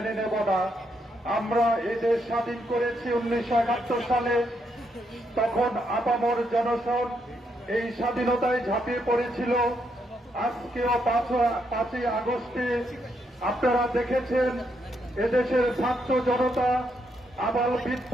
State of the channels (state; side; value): normal; both; correlation 0.78